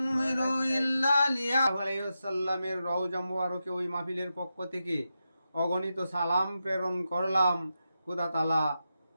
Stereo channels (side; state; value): both; inverted; correlation -0.89